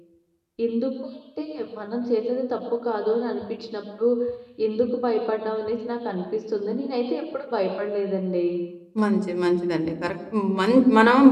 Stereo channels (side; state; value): both; identical; correlation 1.00